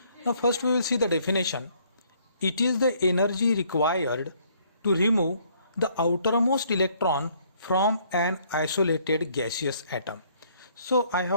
Now first we will see the definition. It is the energy required to remove the outermost electron from an isolated gaseous atom. So I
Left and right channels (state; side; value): inverted; both; correlation -0.64